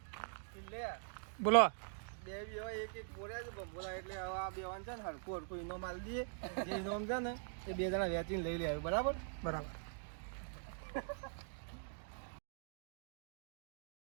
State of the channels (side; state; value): left; silent; digital silence